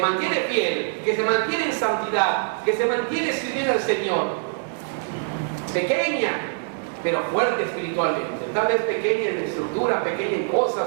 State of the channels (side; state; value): left; silent; 63 dB below the other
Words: mantiene fiel, que se mantiene en santidad, que se mantiene sirviendo al Señor. Pequeña, pero fuerte espiritualmente. Tal vez pequeña en estructura, pequeña en